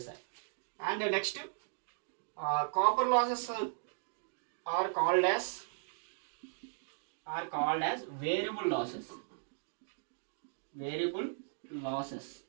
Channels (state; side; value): silent; left; digital silence